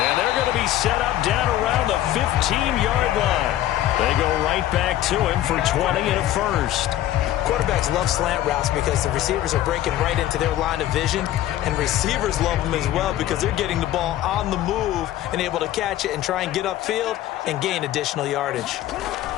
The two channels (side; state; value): right; quieter; 13.4 dB